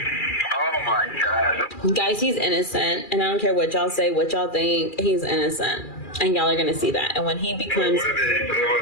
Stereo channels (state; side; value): late; right; 2.4 ms